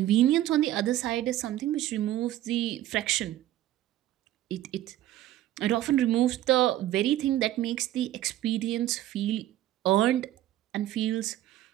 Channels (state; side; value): quieter; left; 13.7 dB